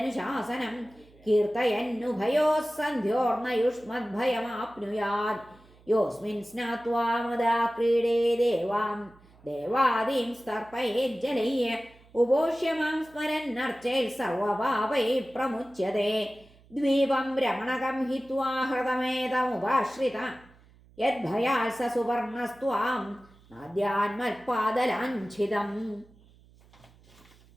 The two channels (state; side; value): noise; right; hum, 27 dB below the sound